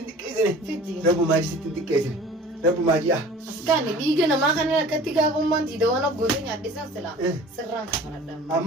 xiqqeessine. Rabbumaa sittiin xiqqeessine. Rabbumaa ji'a. Askanni dhiiga namaa kana akkatti gaafummaan tiidawwan abgootee nyaadhisan silaa sirraan kafaladhaan.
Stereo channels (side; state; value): both; normal; correlation 0.45